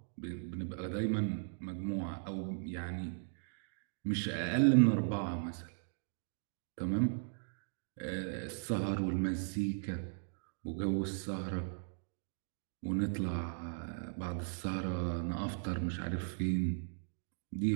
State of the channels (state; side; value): silent; left; digital silence